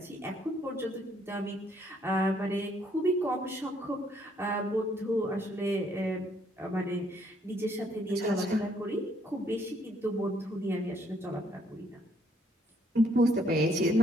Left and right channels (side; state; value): both; normal; correlation 0.68